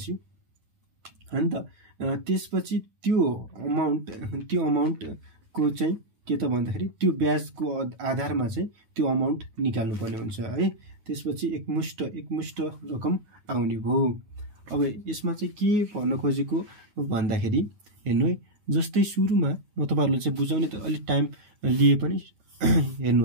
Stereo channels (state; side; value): late; left; 9.6 ms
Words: हैन त त्यसपछि त्यो अमाउन्ट को चाहिँ के त भन्दाखेरि त्यो ब्याजको आधारमा चाहिँ त्यो अमाउन्ट निकाल्नु पर्ने हुन्छ है। त्यसपछि एकमुष्ट रकम आउने भयो। अब यसमा चाहिँ के भन्न खोजेको भन्दाखेरि हेर्नु है, जस्तै सुरुमा म तपाईहरुले चाहिँ बुझाउने त अलि टाइम लिए पनि